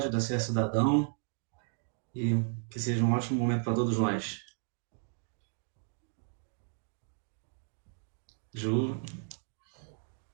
da CS Cidadão, e que seja um ótimo momento para todos nós. Ju,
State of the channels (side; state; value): left; silent; 55 dB below the other